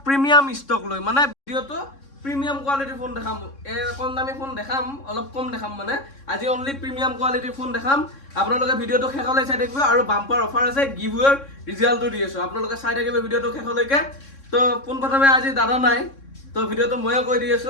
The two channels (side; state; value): right; late; 3.6 ms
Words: প্ৰিমিয়াম ষ্টক লৈ মানে ভিডিওটো প্ৰিমিয়াম কোৱালিটি ফোন দেখাম কম দামী ফোন দেখাম অলপ কম দেখাম মানে আজি অনলি প্ৰিমিয়াম কোৱালিটি ফোন দেখাম আপোনালোকে ভিডিওটো শেষলৈ চাই থাকিব আৰু বাম্পাৰ অফাৰ আছে গিভৱেৰ ৰিজাল্টটো দি আছো আপোনালোকে চাই থাকিব ভিডিওটো শেষলৈকে তো পোনপ্ৰথমে আজি দাদা নাই তো ভিডিওটো ময়ে কৈ দি